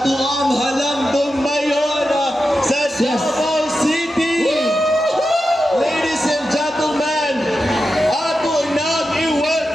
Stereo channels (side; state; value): both; normal; correlation 0.90